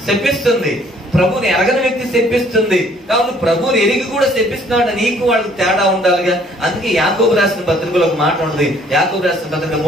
శపిస్తుంది, ప్రభుని ఎరగని వ్యక్తి శపిస్తుంది. కాబట్టి ప్రభుని ఎరిగి కూడా శపిస్తున్నాడు, నీకు వాళ్ళకి తేడా ఉండాలిగా. అందుకే యాకోబు రాసిన పత్రికలో ఒక మాట ఉంటుంది. యాకోబు రాసిన పత్రిక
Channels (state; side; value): normal; both; correlation 0.60